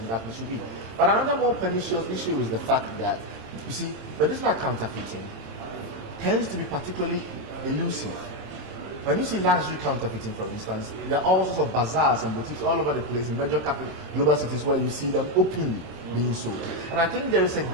that it should be. But another more pernicious issue is the fact that, you see, medicinal counterfeiting tends to be particularly elusive. When you see luxury counterfeiting, for instance, there are all sorts of bazaars and boutiques all over the place in major global cities where you see them openly being sold. And I think there is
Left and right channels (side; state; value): left; late; 27 ms